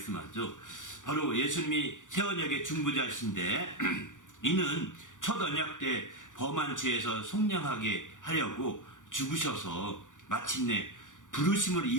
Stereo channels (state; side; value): late; right; 0.87 ms